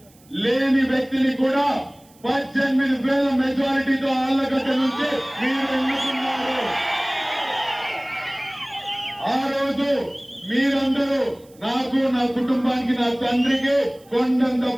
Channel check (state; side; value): noise; right; hiss, 29 dB below the sound